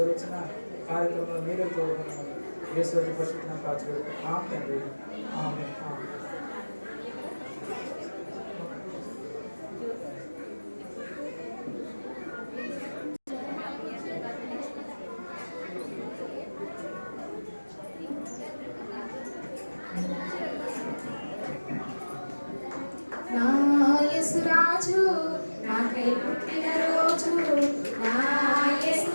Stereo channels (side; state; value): both; inverted; correlation -1.00